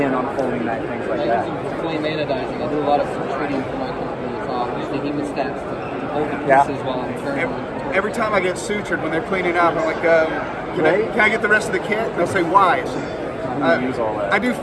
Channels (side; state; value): both; identical; correlation 1.00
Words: on a folding knife, things like I that. use them for flame anodizing. I do a lot of treating for my company. So I'll use the hemostats to hold the Yeah. pieces while I'm turning. Every time I get sutured when they're cleaning up, I'm like, can I get the rest of the kit? And they'll say, why? I say, Use all that. I do